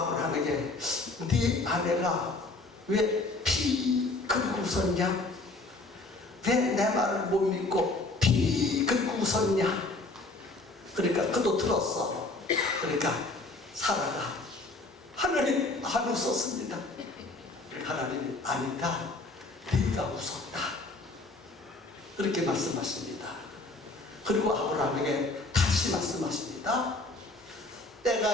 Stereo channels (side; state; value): right; quieter; 3.1 dB